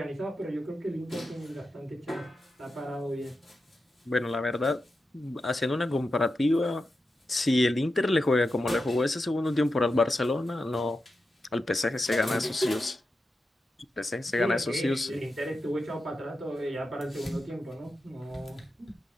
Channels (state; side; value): normal; both; correlation 0.90